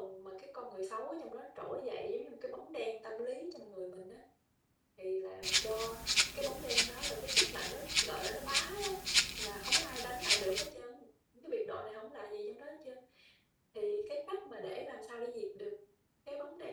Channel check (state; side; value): identical; both; correlation 1.00